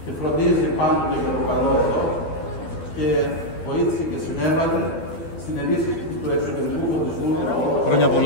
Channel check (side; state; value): right; late; 12 ms